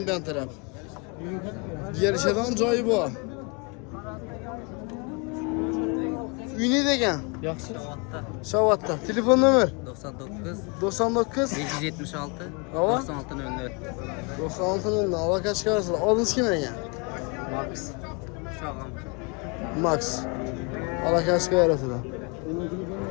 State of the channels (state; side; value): quieter; right; 31.6 dB